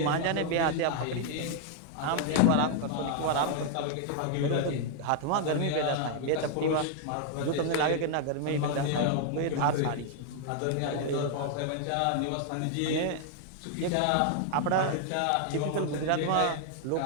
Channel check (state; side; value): different; both; correlation 0.00